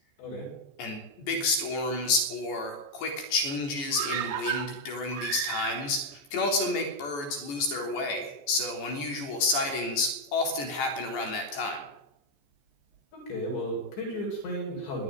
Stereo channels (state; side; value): late; right; 14 ms